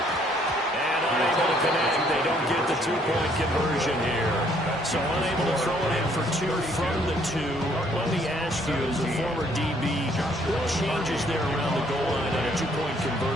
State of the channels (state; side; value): normal; both; correlation 0.65